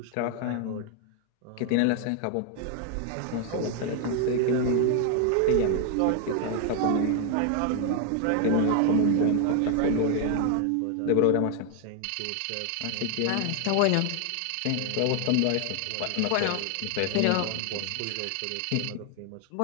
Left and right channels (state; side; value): different; both; correlation 0.00